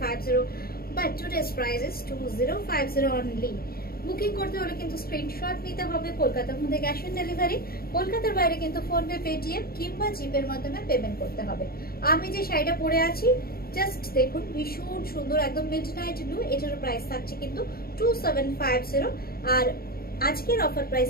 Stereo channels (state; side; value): late; right; 0.44 ms